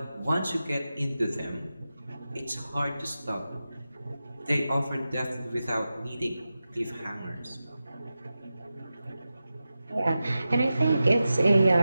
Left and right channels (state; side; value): inverted; both; correlation -0.93